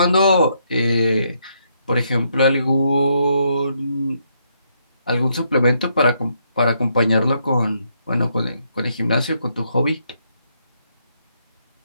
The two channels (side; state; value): both; inverted; correlation -0.75